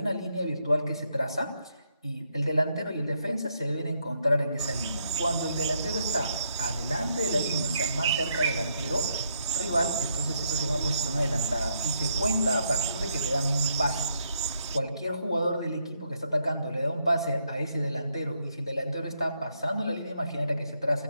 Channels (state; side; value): inverted; both; correlation -0.77